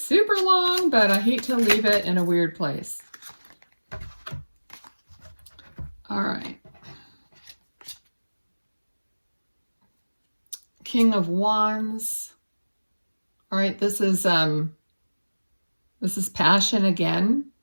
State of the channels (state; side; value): inverted; both; correlation -1.00